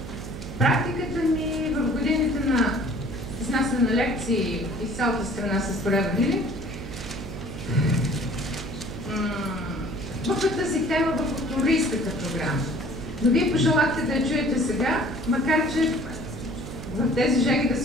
Практиката ми в годините на изнасяне на лекции из цялата страна с проявили в тази тема в футуристската програма. Но вие пожелахте да я чуете сега, макар че в тези жеги да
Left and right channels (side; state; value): right; noise; hum, 10 dB below the sound